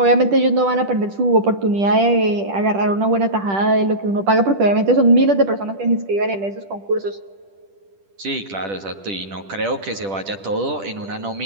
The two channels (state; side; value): late; left; 10 ms